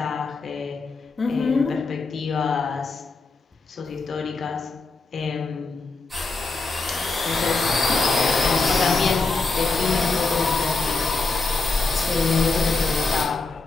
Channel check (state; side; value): quieter; right; 3.8 dB